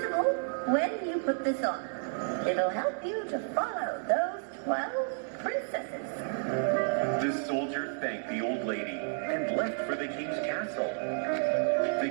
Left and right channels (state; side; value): silent; left; 57 dB below the other